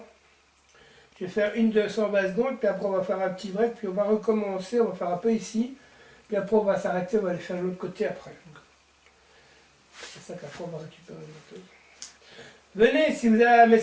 Je vais faire une 220 secondes, puis après on va faire un petit break, puis on va recommencer, on va faire un peu ici, puis après on va s'arrêter, on va aller faire de l'autre côté après. C'est ça qu'après on va récupérer le moto. Venez, si vous avez un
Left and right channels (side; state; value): both; identical; correlation 1.00